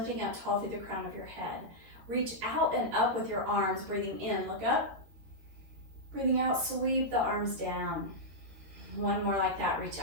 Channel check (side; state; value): left; late; 13 ms